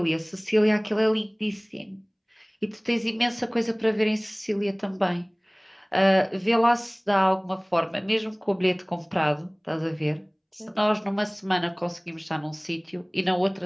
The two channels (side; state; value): both; identical; correlation 1.00